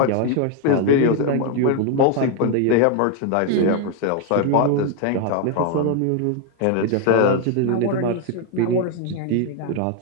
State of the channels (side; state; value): both; different; correlation 0.01